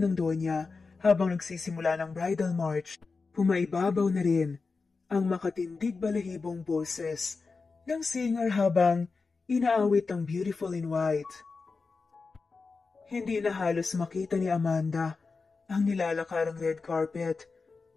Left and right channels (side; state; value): right; quieter; 4.4 dB